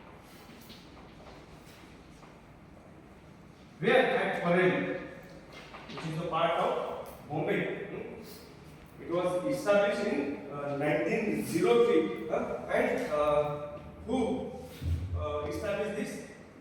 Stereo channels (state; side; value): identical; both; correlation 1.00